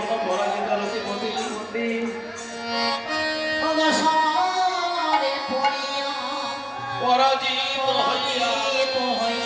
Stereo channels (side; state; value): both; identical; correlation 1.00